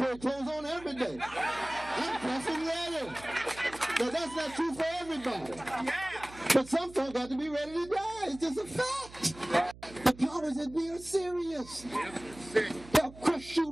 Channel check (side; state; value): right; noise; hum, 19 dB below the sound